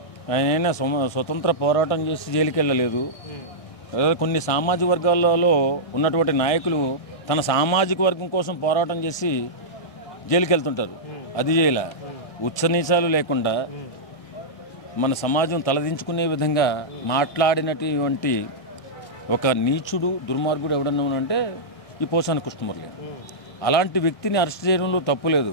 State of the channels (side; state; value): right; late; 1.6 ms